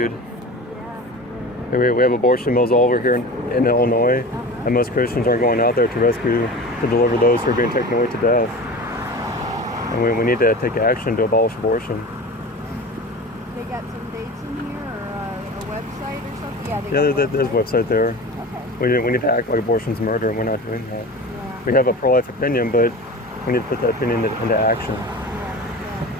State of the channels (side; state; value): both; normal; correlation 0.33